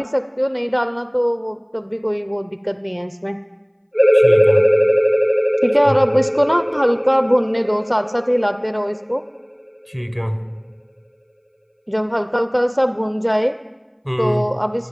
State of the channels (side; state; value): both; identical; correlation 1.00